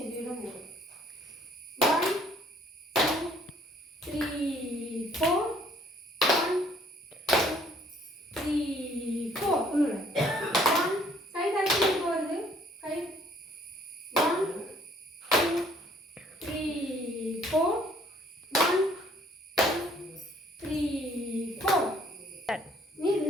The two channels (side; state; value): both; normal; correlation 0.61